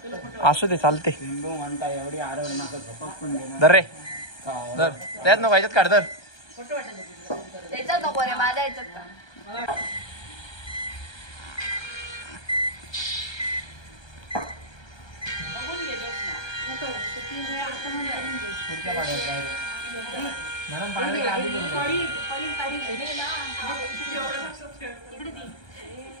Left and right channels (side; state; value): right; late; 1.2 ms